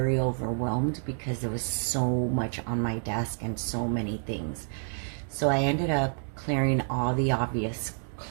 overwhelmed because there was so much on my desk and so many things. So I ended up clearing all the obvious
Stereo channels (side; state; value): left; silent; 56 dB below the other